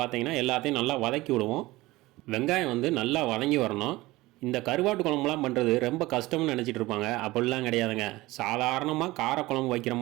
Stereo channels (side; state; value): left; quieter; 19.5 dB